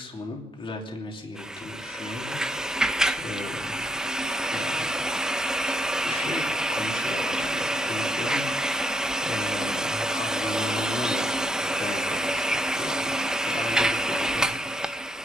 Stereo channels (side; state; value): both; normal; correlation 0.77